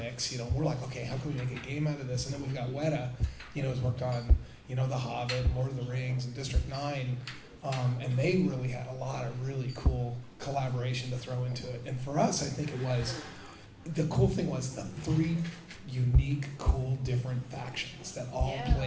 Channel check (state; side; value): identical; both; correlation 1.00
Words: We're like, okay, how can we make a game out of this? And then we've got Weta, who's worked on The Hobbit, Lord of the Rings, and District 9, and they really had a lot of really cool collaboration to throw into it. And for us, I think the cool thing was the three unique, cool, different factions that all